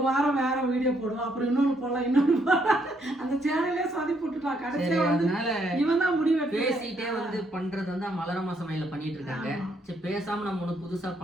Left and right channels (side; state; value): both; normal; correlation 0.72